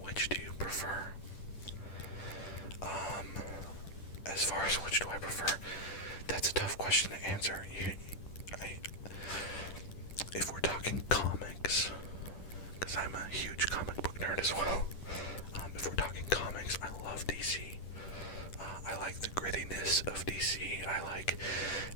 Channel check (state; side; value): late; right; 10 ms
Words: do you prefer? As far as which do I prefer, that's a tough question to answer. If we're talking comics, because I'm a huge comic book nerd as well, if we're talking comics, I love DC. I like the grittiness of DC. I like